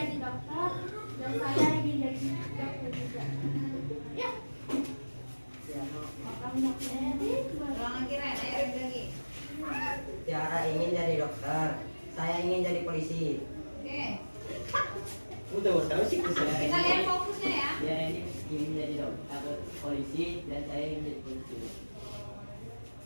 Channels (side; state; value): both; inverted; correlation -1.00